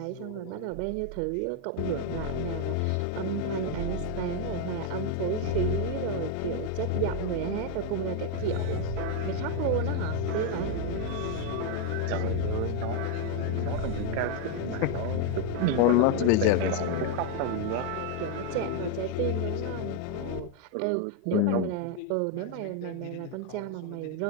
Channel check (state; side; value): different; both; correlation 0.01